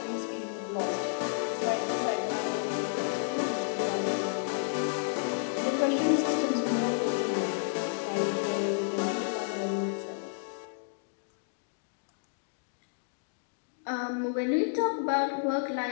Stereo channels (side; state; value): right; silent; digital silence